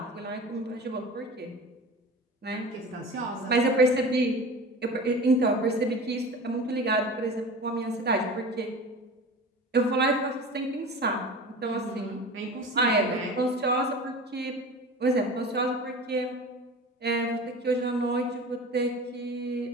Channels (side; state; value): both; normal; correlation 0.35